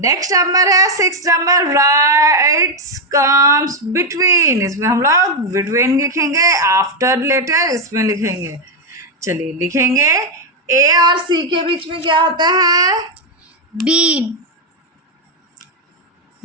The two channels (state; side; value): normal; both; correlation 0.02